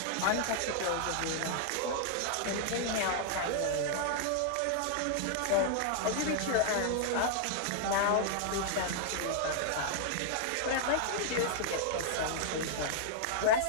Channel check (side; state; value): both; different; correlation -0.01